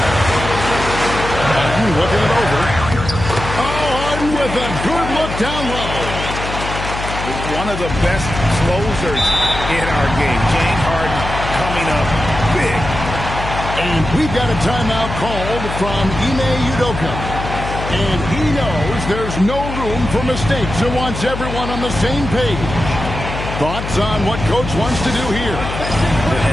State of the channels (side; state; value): left; noise; hum, 7 dB below the sound